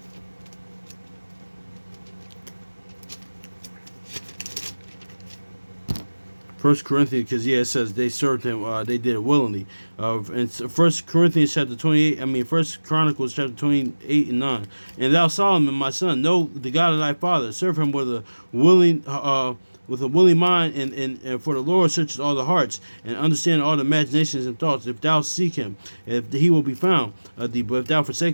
First Corinthians, because it says they served him, they did it willingly. And First Corinthians chapter 28, First Chronicles chapter 28 and 9. And thou Solomon, my son, know the God of thy father, serve him with a willing mind, and for the Lord searches all the hearts, and understand all the imaginations and thoughts. If thou seek him, if he will be found thee, but if thou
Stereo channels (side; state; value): both; inverted; correlation -1.00